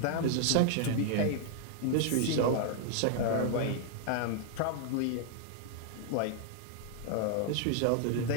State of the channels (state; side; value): different; both; correlation 0.00